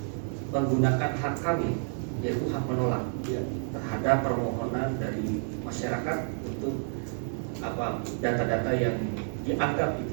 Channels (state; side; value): silent; left; 58 dB below the other